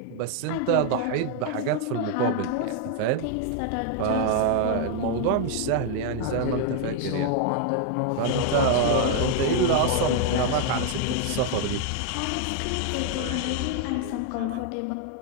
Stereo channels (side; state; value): both; different; correlation 0.00